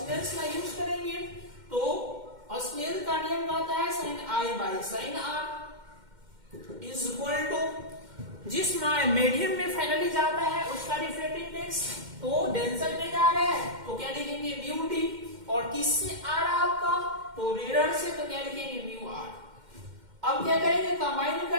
का यूज करेंगे तो स्नेल का नियम कहता है sine I by sine R is equal to, जिस मीडियम में फाइनली जाता है उसका रिफ्रैक्टिव इंडेक्स, तो डेंसर में जा रहा है तो क्या लिखेंगे म्यू डी, और किससे आ रहा है आपका, तो रेयर से, तो क्या लिखेंगे म्यू आर। अब क्या करेंगे, कंबाइन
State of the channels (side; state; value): left; late; 2.1 ms